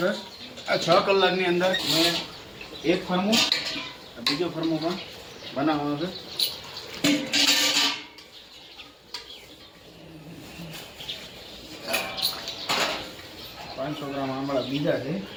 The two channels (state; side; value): identical; both; correlation 1.00